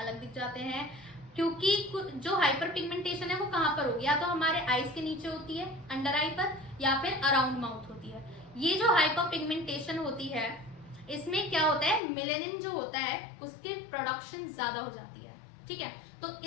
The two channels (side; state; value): right; drops out; at 12.0 s